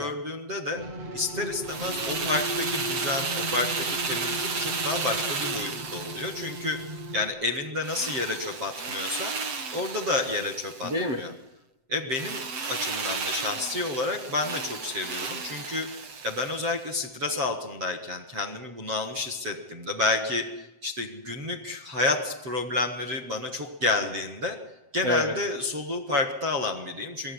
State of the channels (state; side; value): late; left; 7.8 ms